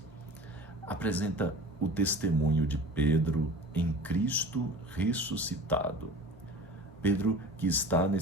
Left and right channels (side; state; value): both; normal; correlation 0.39